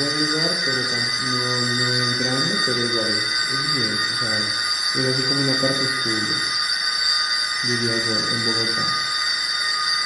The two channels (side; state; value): both; identical; correlation 1.00